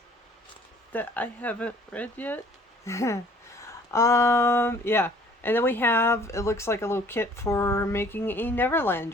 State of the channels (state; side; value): normal; both; correlation 0.55